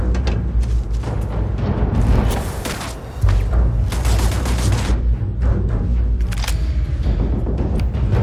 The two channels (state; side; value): identical; both; correlation 1.00